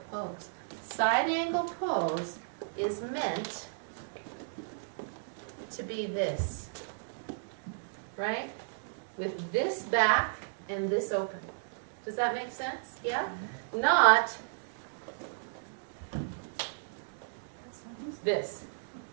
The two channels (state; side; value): silent; left; digital silence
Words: pose. Side angle pose is meant to be this, right? With this back and this open. Does that make sense? Yeah? Not this.